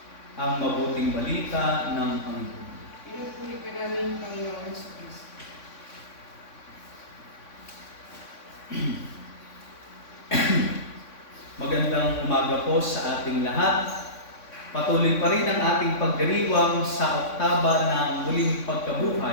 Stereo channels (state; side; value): late; right; 3.6 ms